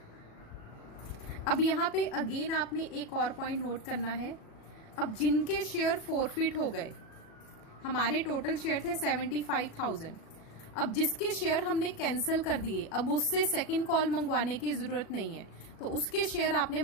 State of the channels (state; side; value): late; right; 37 ms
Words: अब यहां पे अगेन आपने एक और पॉइंट नोट करना है। अब जिनके शेयर फोरफीट हो गए, हमारे टोटल शेयर थे 75,000, अब जिसके शेयर हमने कैंसिल कर दिए, अब उससे सेकंड कॉल मंगवाने की जरूरत नहीं है, तो उसके शेयर आपने